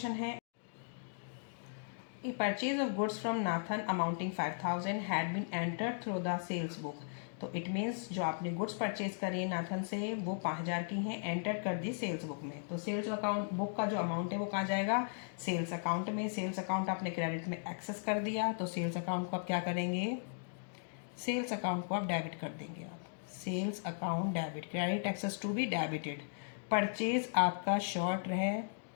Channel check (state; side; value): silent; right; digital silence